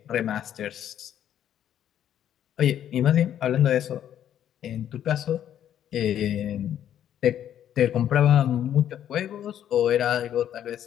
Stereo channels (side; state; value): right; quieter; 10.4 dB